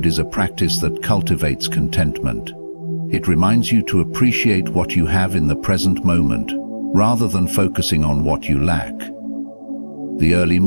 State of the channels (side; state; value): both; inverted; correlation -1.00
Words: is a practice that cultivates contentment. It reminds you to appreciate what you have in the present moment, rather than focusing on what you lack. The early